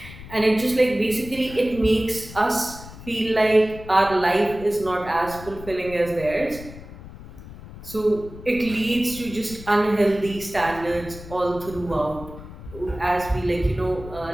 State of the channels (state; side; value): noise; left; rumble, 15 dB below the sound